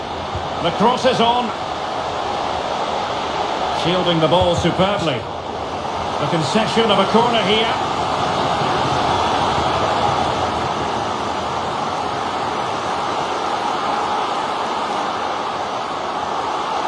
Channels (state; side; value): identical; both; correlation 1.00